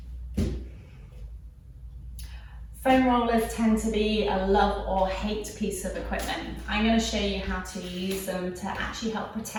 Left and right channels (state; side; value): identical; both; correlation 1.00